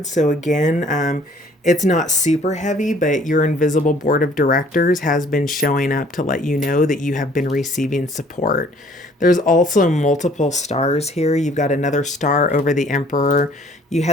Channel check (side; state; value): both; normal; correlation 0.57